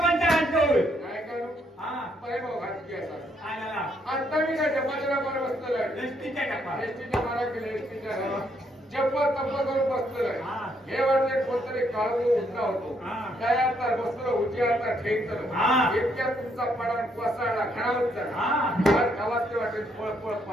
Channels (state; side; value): normal; both; correlation 0.72